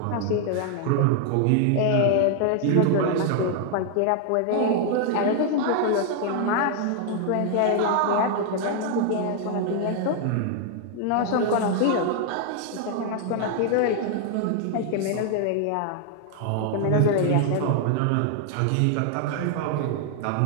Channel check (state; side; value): different; both; correlation 0.00